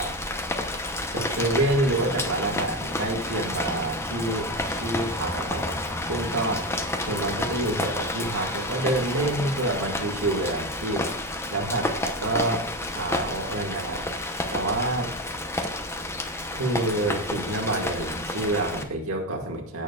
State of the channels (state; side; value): normal; both; correlation 0.18